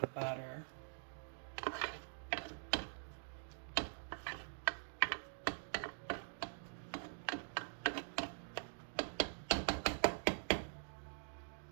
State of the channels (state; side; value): silent; left; digital silence